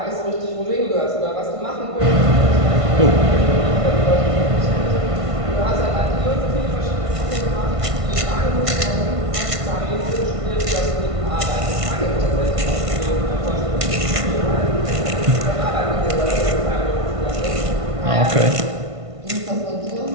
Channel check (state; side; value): late; left; 1.5 ms